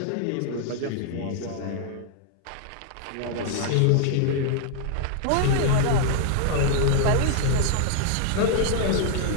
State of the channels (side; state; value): both; different; correlation -0.01